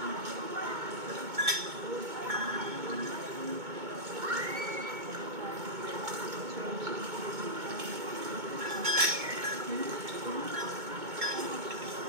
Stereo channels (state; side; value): late; left; 2.2 ms